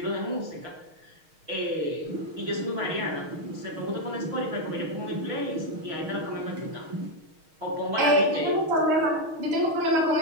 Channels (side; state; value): left; late; 6.4 ms